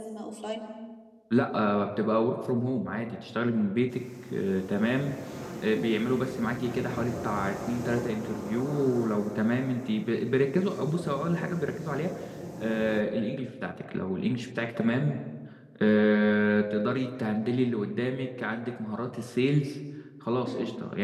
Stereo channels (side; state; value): both; identical; correlation 1.00